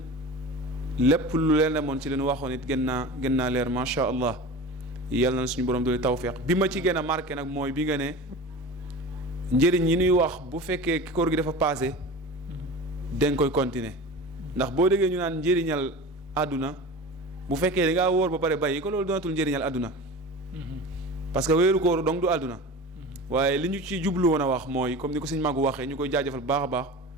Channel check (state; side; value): normal; both; correlation 0.33